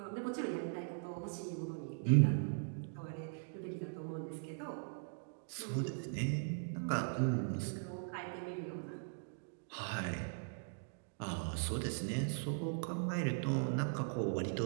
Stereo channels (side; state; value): left; silent; digital silence